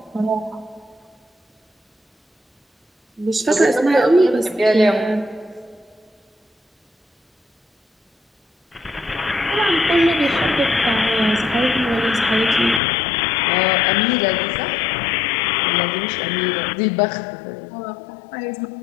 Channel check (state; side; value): drops out; right; at 12.8 s